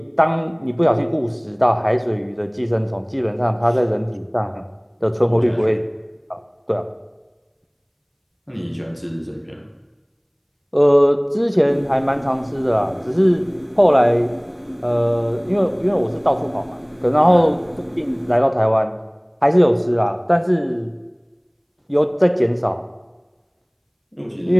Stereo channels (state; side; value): identical; both; correlation 1.00